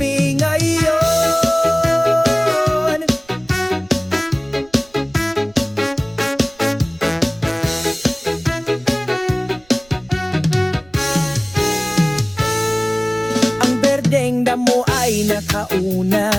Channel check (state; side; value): noise; right; rumble, 29 dB below the sound